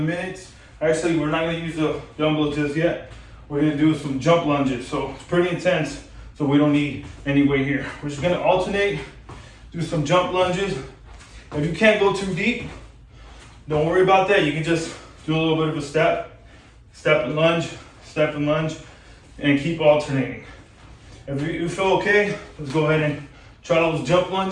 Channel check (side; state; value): both; identical; correlation 1.00